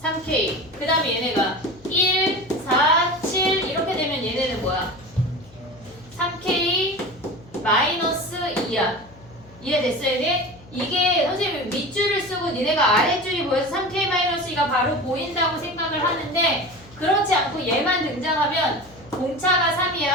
3K. 그 다음에 얘네가 1, 4, 7 이렇게 되면 얘네는 뭐야? 3K 마이너스 2야. 이해됐어 얘네? 이게 선생님이 밑줄을 쓰고 니네가 아랫줄이 보여서 3K-2가 바로 보인다고 생각을 하는데 그렇지 않고 얘만 등장하면 공차가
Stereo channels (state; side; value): noise; left; hum, 24 dB below the sound